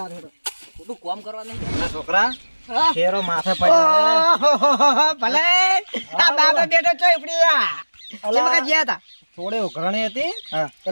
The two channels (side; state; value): both; inverted; correlation -1.00